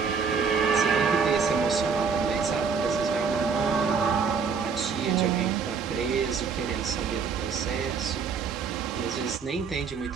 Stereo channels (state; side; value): quieter; left; 5.7 dB